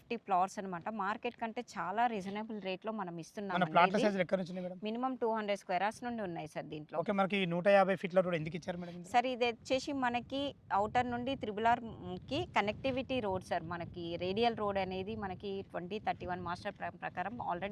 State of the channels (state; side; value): identical; both; correlation 1.00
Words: ప్లాట్స్ అనమాట. మార్కెట్ కంటే చాలా రీజనబుల్ రేట్లో మనం మన ఇస్తున్నాం. ప్లాట్ల సైజులు ఎక్కడ నుంచి మేడం? మినిమం 200 స్క్వేర్ యార్డ్స్ నుండి ఉన్నాయి సార్ దీంట్లో. ఓకే, మనకి 150 ఫీట్ల రోడ్ ఎందుకు ఇచ్చారు మేడం? సార్ ఇది వచ్చేసి మనకి అవుటర్ నుండి త్రిబుల్ ఆర్కి కనెక్టివిటీ రోడ్ సార్. మనకి రేడియల్ రోడ్ అనేది మనకి 2031 మాస్టర్ ప్రకారం